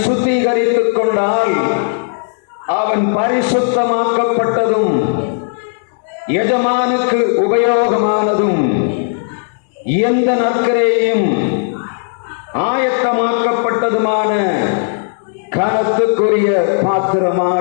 சுத்திகரித்துக் கொண்டால் அவன் பரிசுத்தமாக்கப்பட்டதும் எஜமானுக்கு உபயோகமானதும் எந்த நற்கிரையும் ஆயத்தமாக்கப்பட்டதுமான கனத்துக்குரிய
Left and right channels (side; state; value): right; silent; digital silence